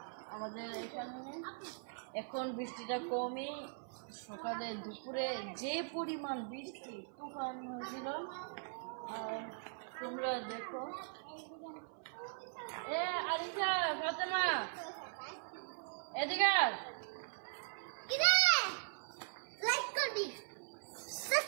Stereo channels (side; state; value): left; silent; 51 dB below the other